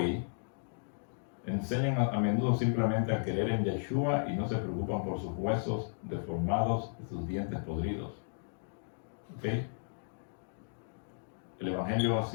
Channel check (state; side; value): silent; right; digital silence